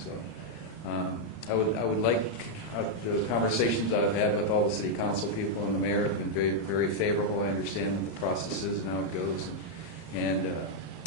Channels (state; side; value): late; right; 34 ms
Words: I would like the conversations I've had with all the city council people and the mayor have been very, very favorable. I understand what the process is and how it goes, and